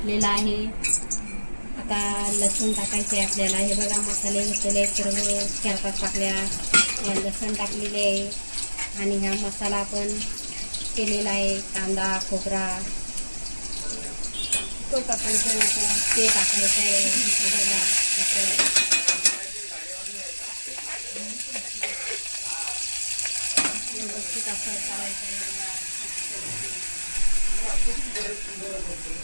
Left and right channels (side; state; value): both; inverted; correlation -1.00